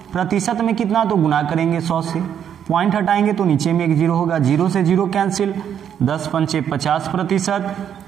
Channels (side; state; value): left; quieter; 8.9 dB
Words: प्रतिशत में कितना, तो गुना करेंगे 100 से, पॉइंट हटाएंगे तो नीचे में एक 0 होगा, 0 से 0 कैंसिल, 10 पंचे 50%,